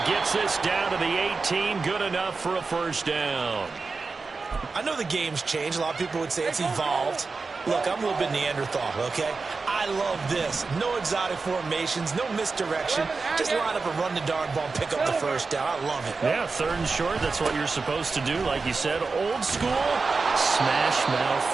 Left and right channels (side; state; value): left; quieter; 4.3 dB